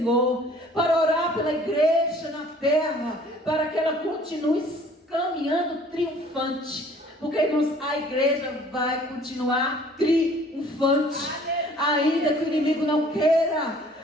Para orar pela igreja na terra, para que ela continue caminhando triunfante. Porque, irmãos, a igreja vai continuar triunfante. Ainda que o inimigo não queira,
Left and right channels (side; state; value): both; normal; correlation 0.54